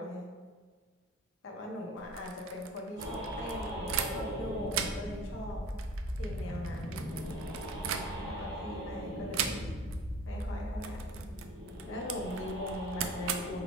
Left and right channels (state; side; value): normal; both; correlation 0.42